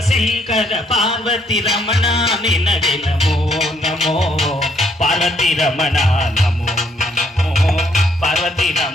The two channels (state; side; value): normal; both; correlation 0.69